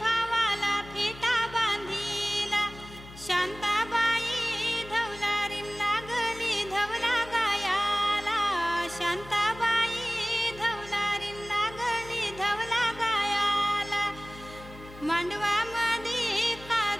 भावाला फेटा बांधिला. शांताबाई धवलारीन लागली धवला गायाला, शांताबाई धवलारीन लागली धवला गायाला. मांडवामध्ये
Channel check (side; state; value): left; noise; hum, 17 dB below the sound